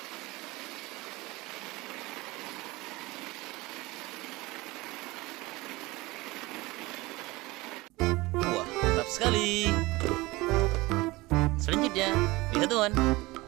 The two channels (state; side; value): quieter; left; 21.5 dB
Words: Wah, mantap sekali. Selanjutnya, lihat teman.